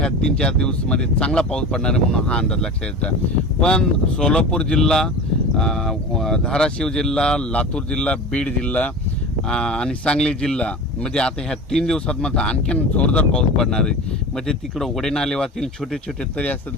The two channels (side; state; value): both; normal; correlation 0.32